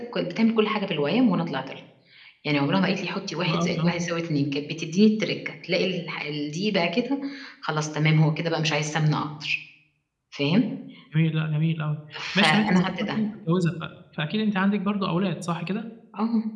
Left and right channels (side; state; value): both; identical; correlation 1.00